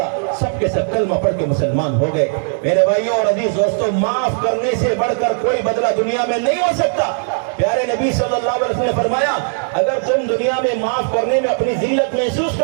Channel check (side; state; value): left; silent; 58 dB below the other